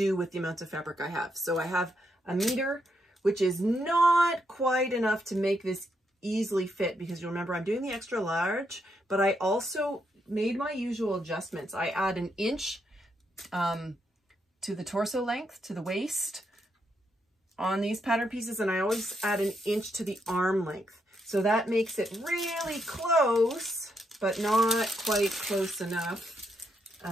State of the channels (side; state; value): both; normal; correlation 0.79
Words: with the amounts of fabric I have. So I have a meter, which is not quite enough to make this easily fit, because you'll remember I'm doing the extra large, but I also made my usual adjustments. I add an inch to the torso length, to the waist on these pattern pieces, and I always add an inch to the arm length. So that makes it really close, but not quite close enough